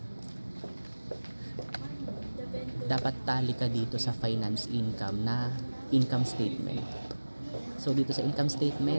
Dapat tali ka dito sa finance income na income statement. So dito sa income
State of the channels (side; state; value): both; inverted; correlation -1.00